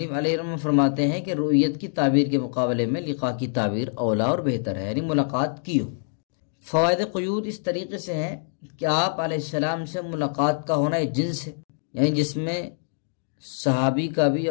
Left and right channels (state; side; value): silent; right; digital silence